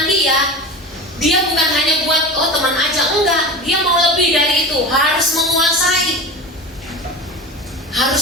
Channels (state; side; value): normal; both; correlation 0.30